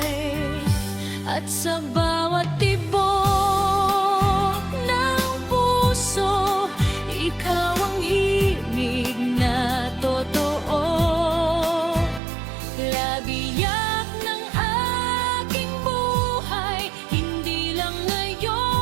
At sa bawat tibok ng puso, ikaw ang himig na totoo. Labiyak ng aking buhay, hindi lang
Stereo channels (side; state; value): left; drops out; at 12.2 s